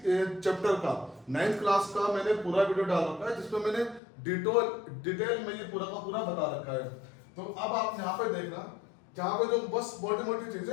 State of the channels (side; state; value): right; drops out; at 4.0 s